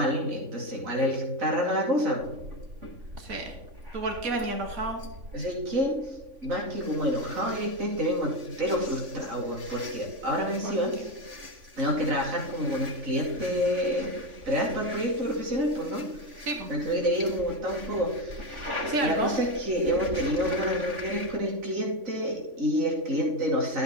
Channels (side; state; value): left; late; 3.5 ms